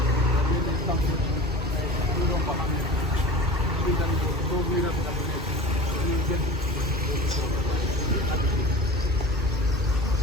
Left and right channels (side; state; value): both; normal; correlation 0.36